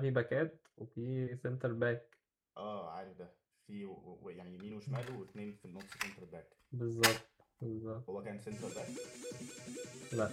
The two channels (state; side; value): identical; both; correlation 1.00